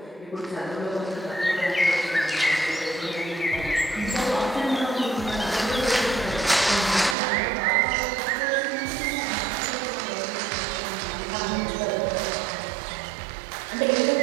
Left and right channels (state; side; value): drops out; left; at 7.2 s